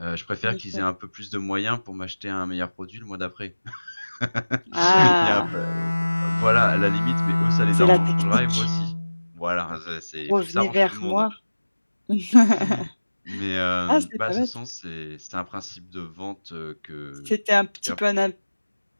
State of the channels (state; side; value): inverted; both; correlation -1.00